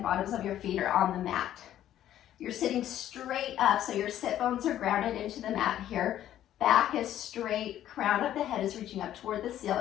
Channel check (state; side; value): quieter; right; 11.9 dB